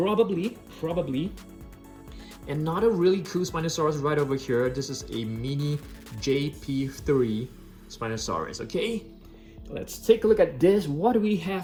another really cool Spinosaurus right over here. This is a mini JP3 Spinosaurus. Okay, let's take a look at this. What do we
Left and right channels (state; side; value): identical; both; correlation 1.00